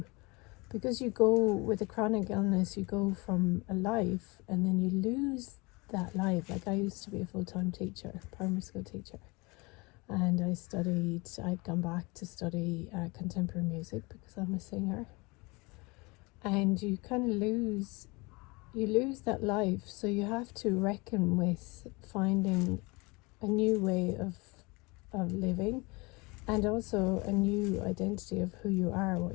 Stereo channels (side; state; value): right; quieter; 26.2 dB